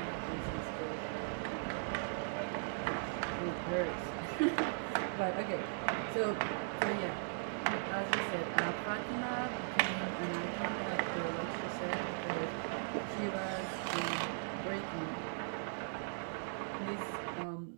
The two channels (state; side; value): silent; left; digital silence